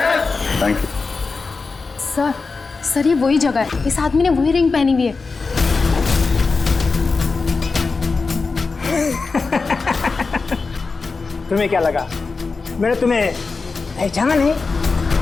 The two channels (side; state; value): right; quieter; 4.3 dB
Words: Thank you. सर ये वही जगह है, इस आदमी ने वही रिंग पहनी हुई है। तुम्हें क्या लगा मैंने तुम्हें पहचाना नहीं?